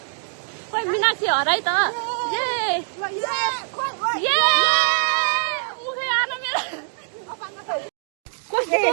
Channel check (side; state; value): left; silent; digital silence